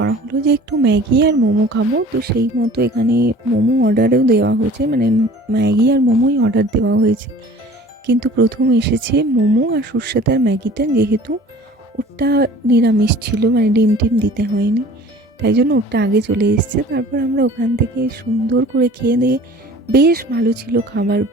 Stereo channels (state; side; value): normal; both; correlation 0.46